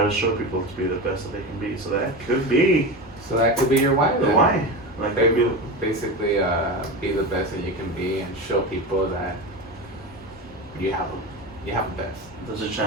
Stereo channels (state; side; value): normal; both; correlation 0.23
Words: to show people to be the best that they can be. So that could be. So that could be your why. The then. why. Like basically, be the best that you can be and show people that you have the best. There's a